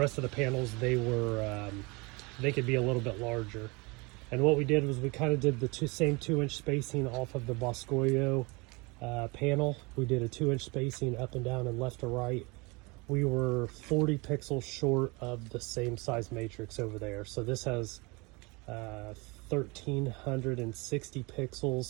of the panels, they could be a little bit larger. And what we did was we kind of did the same 2-inch spacing off of the Boscoio panel. We did a 2-inch spacing up and down and left to right. We were 40 pixels short of the same size matrix over there. So this has 1360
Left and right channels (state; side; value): quieter; left; 27.0 dB